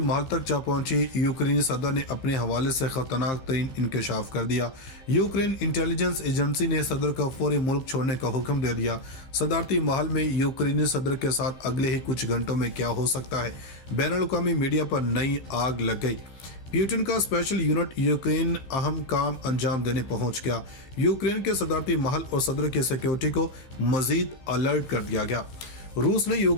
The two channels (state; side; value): late; right; 15 ms